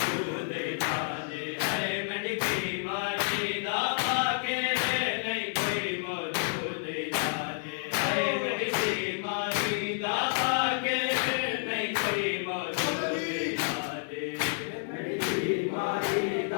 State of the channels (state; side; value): silent; right; digital silence